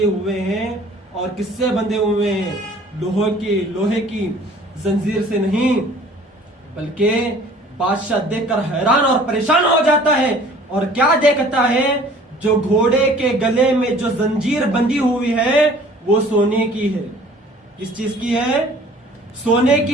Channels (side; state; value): both; normal; correlation 0.51